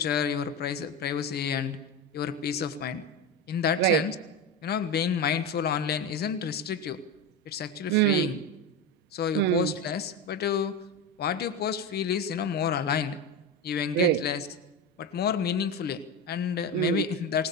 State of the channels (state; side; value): normal; both; correlation 0.19